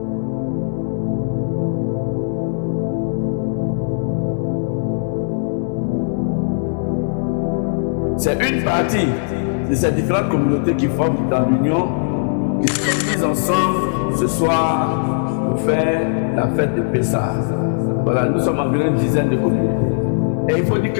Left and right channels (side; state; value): right; silent; 66 dB below the other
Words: C'est une partie de ces différentes communautés qui forment dans l'Union, qui se réunissent ensemble ce soir pour faire la fête de Pessah. Voilà, nous sommes environ une dizaine de communautés. Et il faut dire